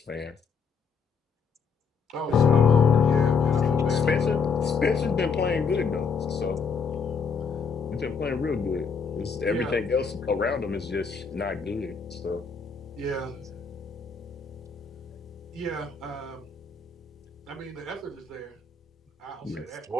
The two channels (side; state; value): right; quieter; 5.5 dB